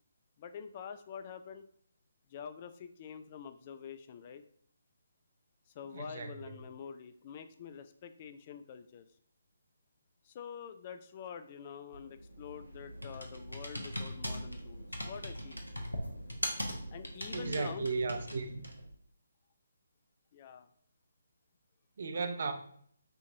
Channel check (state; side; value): inverted; both; correlation -0.81